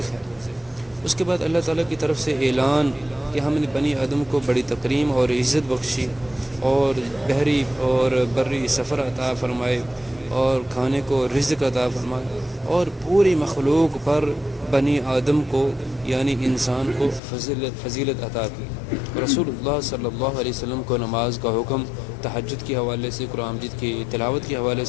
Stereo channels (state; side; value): drops out; right; at 17.2 s